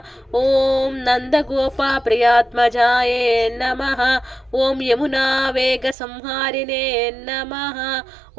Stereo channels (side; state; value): left; drops out; at 6.0 s